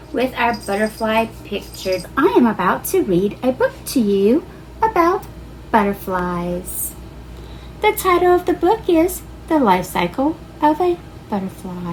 with our butterfly pictures. I am about to read a book to you about butterflies. The title of the book is The Life Cycle of a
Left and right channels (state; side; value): identical; both; correlation 1.00